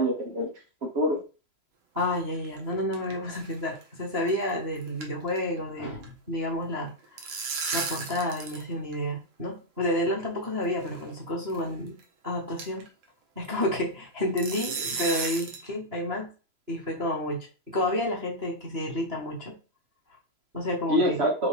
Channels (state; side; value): late; left; 3.0 ms